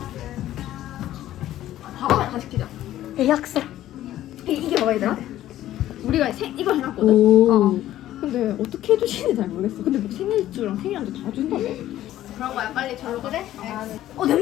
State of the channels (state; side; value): quieter; right; 13.4 dB